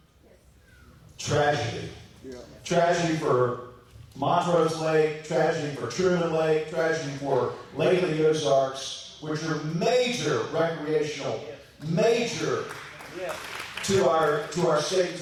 tragedy. Tragedy for Montrose Lake, tragedy for Truman Lake, tragedy for Lake of the Ozarks, which are major recreational, major to our state,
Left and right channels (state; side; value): identical; both; correlation 1.00